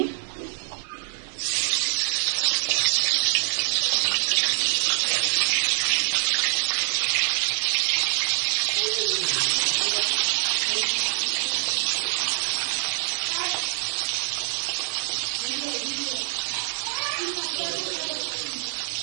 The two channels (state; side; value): silent; left; 62 dB below the other